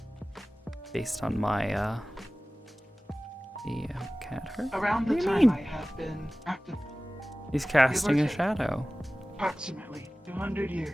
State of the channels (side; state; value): both; normal; correlation 0.97